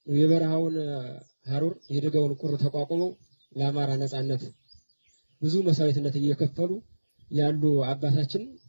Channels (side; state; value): both; inverted; correlation -1.00